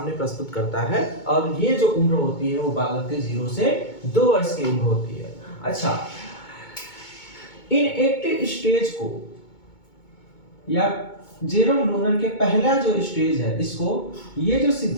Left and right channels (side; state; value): right; late; 2.2 ms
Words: प्रस्तुत करता है। और ये जो उम्र होती है वो बालक के 0 से 2 वर्ष की उम्र होती है। अच्छा, इनएक्टिव स्टेज को या जेरोम लूनर के पहला जो स्टेज है, इसको, ये जो